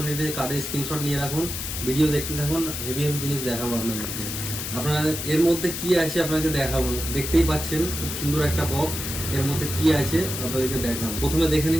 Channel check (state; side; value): noise; left; hiss, 5 dB below the sound